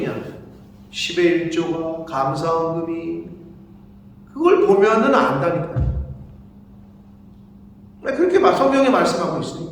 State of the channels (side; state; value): both; identical; correlation 1.00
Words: 10의 1조가 감사헌금이 그걸 보면은 안다니까요. 그렇게 성경이 말씀하고